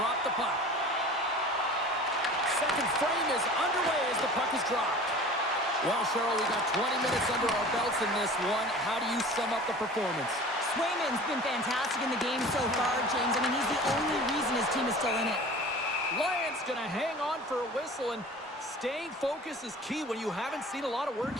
the puck. Second frame is underway as the puck is dropped. Well, Cheryl, we got 20 minutes under our belts in this one. How do you sum up the performance? Swayman's been fantastic in the game so far, James. I mean, he's the only reason his team is still in it. Lions going to hang on for a whistle, and staying focused is key when you haven't seen a lot of work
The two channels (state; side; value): normal; both; correlation 0.41